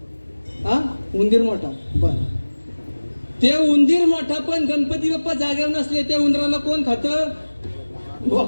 हा उंदीर मोठा बर ते उंदीर मोठा पण गणपती बाप्पा जागेवर नसले त्या उंदराला कोण खातं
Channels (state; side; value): inverted; both; correlation -1.00